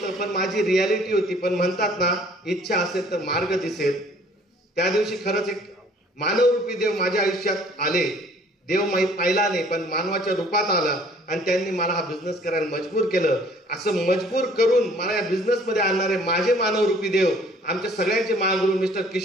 पण माझी रियालिटी होती. पण म्हणतात ना, इच्छा असेल तर मार्ग दिसेल. त्या दिवशी खरंच एक मानवरूपी देव माझ्या आयुष्यात आले. देव पाहिला नाही, पण मानवाच्या रूपात आला आणि त्यांनी मला हा बिझनेस करायला मजबूर केलं. असं मजबूर करून मला या बिझनेस मध्ये आणणारे माझे मानवरूपी देव, आमच्या सगळ्यांचे महागुरू मिस्टर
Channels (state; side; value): normal; both; correlation 0.56